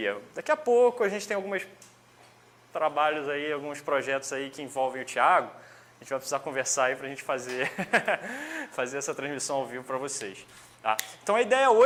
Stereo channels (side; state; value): both; identical; correlation 1.00